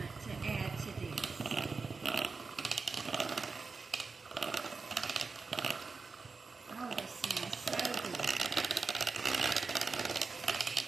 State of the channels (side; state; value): left; quieter; 4.5 dB